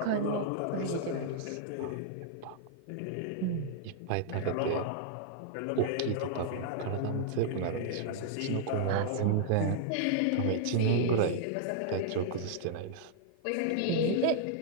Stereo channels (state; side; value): different; both; correlation -0.01